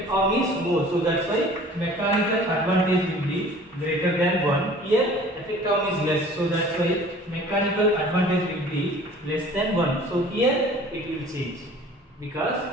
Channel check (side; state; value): both; normal; correlation 0.48